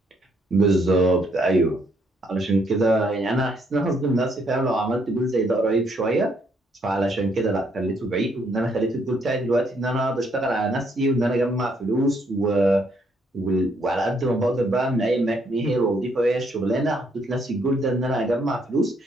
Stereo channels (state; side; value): normal; both; correlation 0.71